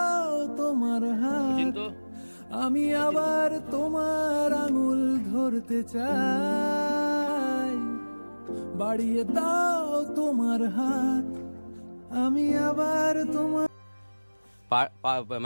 তোমার হাত, আমি আবার তোমার আঙুল ধরতে চাই। বাড়িয়ে দাও তোমার হাত, আমি আবার তোমার।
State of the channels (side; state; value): both; inverted; correlation -1.00